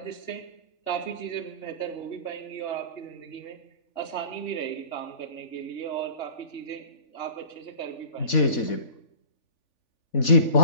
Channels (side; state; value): right; late; 3.4 ms